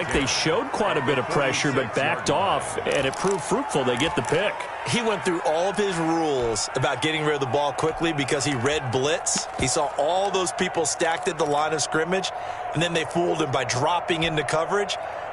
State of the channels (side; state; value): both; identical; correlation 1.00